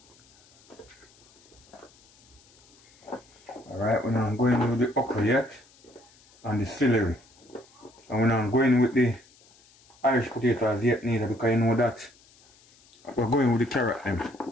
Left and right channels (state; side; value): noise; left; hiss, 29 dB below the sound